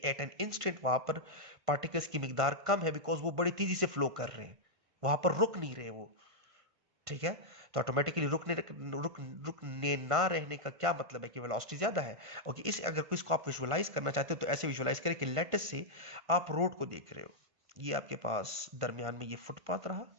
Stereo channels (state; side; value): late; left; 1.5 ms